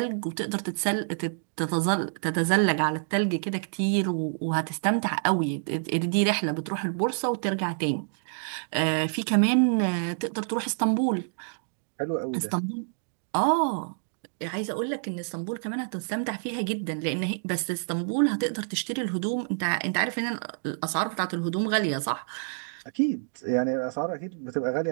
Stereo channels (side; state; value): left; silent; digital silence